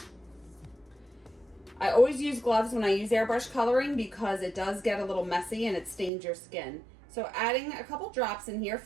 I always use gloves when I use airbrush coloring because it does get a little messy and it stains your skin. So adding a couple drops in here,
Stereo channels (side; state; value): left; drops out; at 6.1 s